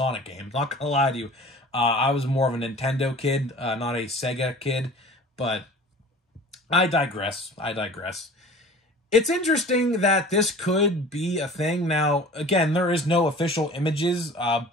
games. Not going to lie to you. I was more of a Nintendo kid, not a Sega kid, but I digress. It's interesting that this could be a thing. Now, again, there is no official images,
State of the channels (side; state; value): both; normal; correlation 0.43